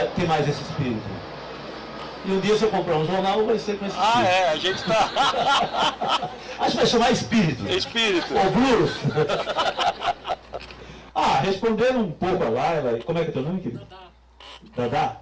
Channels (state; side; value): identical; both; correlation 1.00